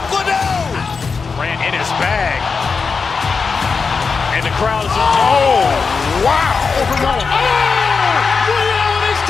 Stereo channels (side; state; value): right; quieter; 5.0 dB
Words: Liddell. Grant in his bag. And the crowd is, oh, wow. Overrun. He's